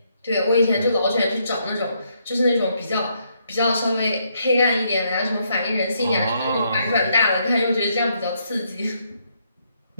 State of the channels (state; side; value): inverted; both; correlation -0.74